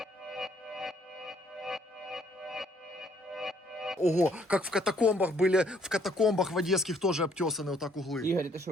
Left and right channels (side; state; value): both; normal; correlation 0.65